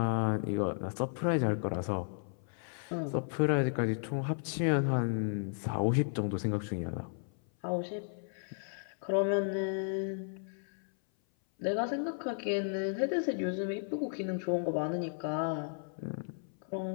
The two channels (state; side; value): silent; right; 55 dB below the other